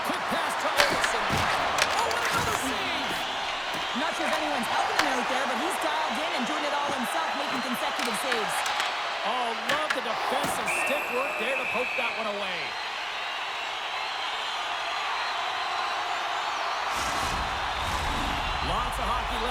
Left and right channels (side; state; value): both; identical; correlation 1.00